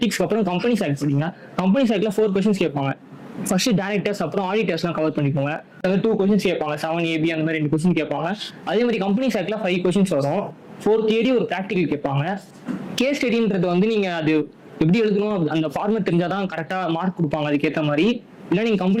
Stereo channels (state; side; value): identical; both; correlation 1.00